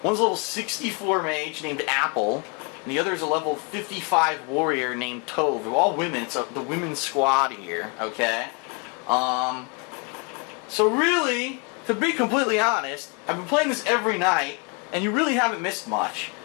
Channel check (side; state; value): right; quieter; 33.1 dB